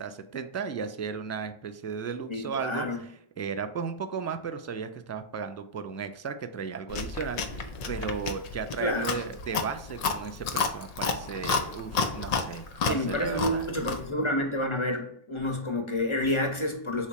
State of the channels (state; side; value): late; right; 1.8 ms